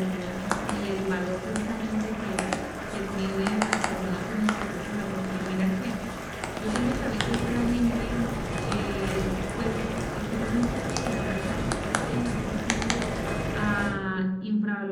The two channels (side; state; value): both; identical; correlation 1.00